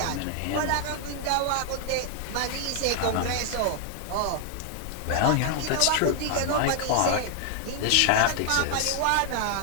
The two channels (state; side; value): different; both; correlation 0.00